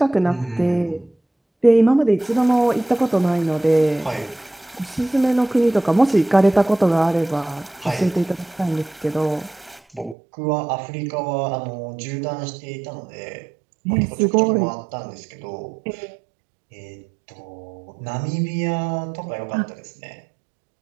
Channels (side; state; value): left; drops out; at 10.2 s